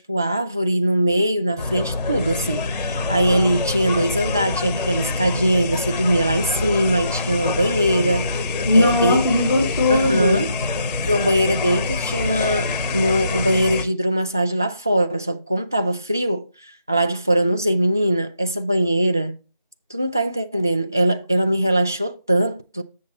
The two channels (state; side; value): inverted; both; correlation -0.78